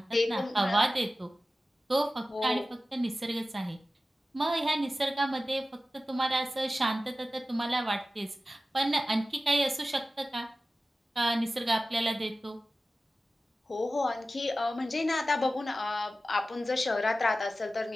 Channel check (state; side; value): normal; both; correlation 0.95